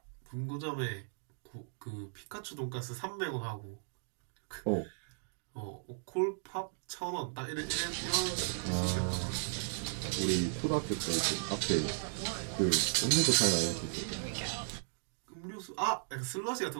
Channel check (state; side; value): silent; left; digital silence